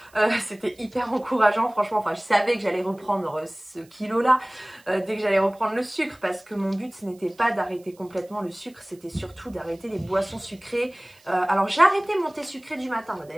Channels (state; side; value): noise; right; hiss, 29 dB below the sound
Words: C'était hyper encourageant franchement, enfin je savais que j'allais reprendre ce kilo là dès que j'allais reprendre le sucre, parce que mon but ce n'était pas d'arrêter complètement le sucre, c'était surtout d'arrêter les boissons sucrées. Alors j'ai arrêté mon thé sucré du matin,